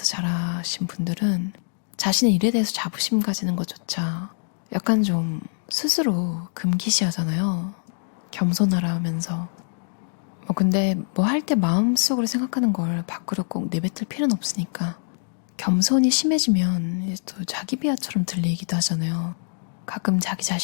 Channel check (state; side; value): silent; right; digital silence